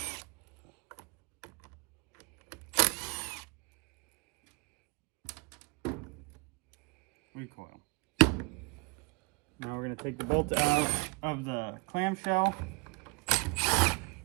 Now we're going to take the bolt out of the clamshell.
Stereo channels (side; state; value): left; quieter; 28.8 dB